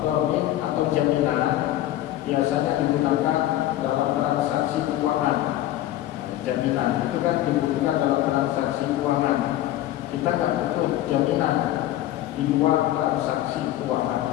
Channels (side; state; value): right; quieter; 13.9 dB